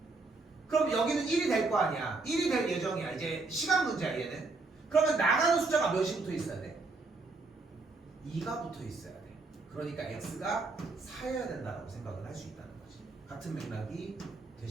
그럼 여기는 1이 될 거 아니야. 1이 될 예정이야. 이제 시간 문제야 얘는. 그러면 나가는 숫자가 몇이 붙어 있어야 돼? 2가 붙어 있어야 돼. 그러니까 x가 4여야 된다고 생각을 할 수 있다는 거지. 같은 맥락이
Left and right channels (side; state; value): left; quieter; 3.7 dB